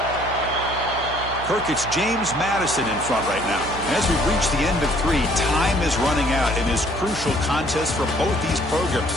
Kirk, it's James Madison in front right now. And as we've reached the end of 3, time is running out in this crucial contest for both these programs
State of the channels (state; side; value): noise; right; hum, 12 dB below the sound